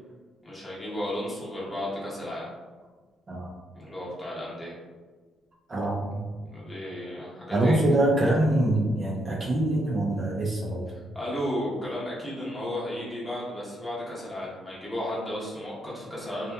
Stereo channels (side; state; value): both; normal; correlation 0.77